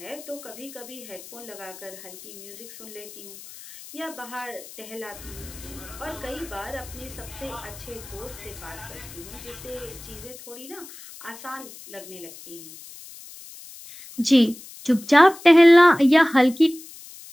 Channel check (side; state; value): left; noise; hiss, 17 dB below the sound